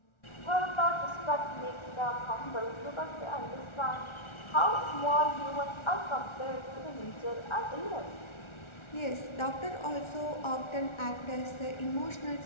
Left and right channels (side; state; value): right; late; 1.4 ms